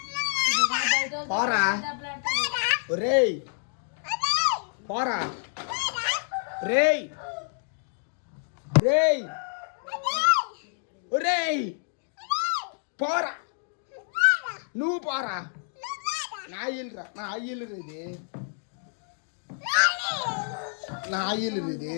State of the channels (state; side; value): silent; right; digital silence